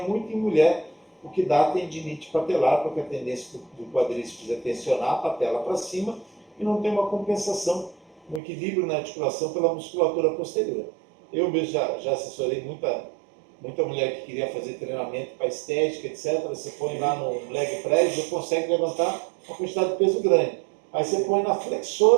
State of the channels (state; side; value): drops out; left; at 8.4 s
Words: muito em mulher, o que dá tendinite patelar, porque a tendência do quadríceps é tensionar a patela para cima e não tem uma compensação, um equilíbrio na articulação pela musculatura posterior. Eu mesmo já assessorei muita mulher que queria fazer treinamento para estética, etc. Você põe lá no leg press, você consegue levantar uma quantidade de peso grande. Aí você põe na